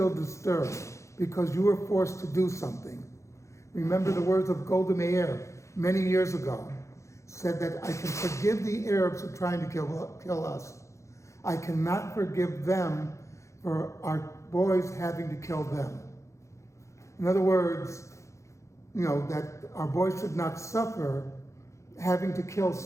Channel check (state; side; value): late; right; 0.14 ms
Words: disturbed because you were forced to do something. Remember the words of Golda Meir many years ago, said that I can forgive the Arabs who are trying to kill us. I cannot forgive them for our boys having to kill them. In other words, that our boys should not suffer having to kill